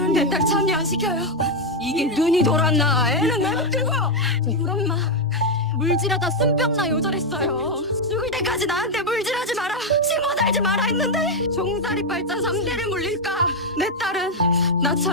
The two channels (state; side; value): normal; both; correlation 0.03